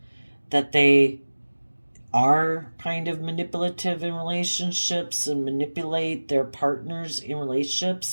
that they are kind of manipulative in relationships and manipulate their partners in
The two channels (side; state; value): both; inverted; correlation -1.00